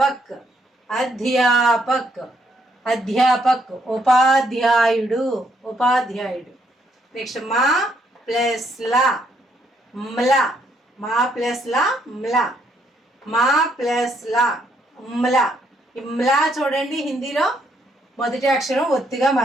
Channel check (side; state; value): both; normal; correlation 0.72